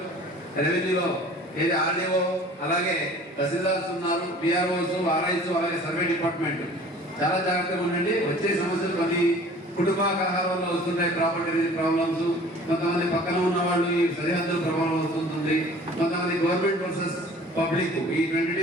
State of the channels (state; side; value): normal; both; correlation 0.48